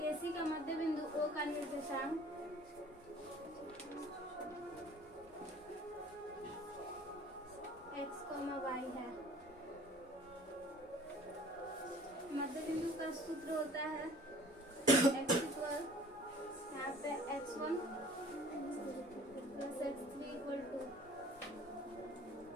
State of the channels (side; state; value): both; normal; correlation 0.49